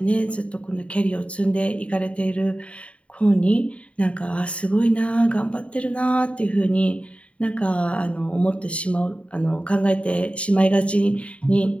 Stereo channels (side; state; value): right; late; 0.063 ms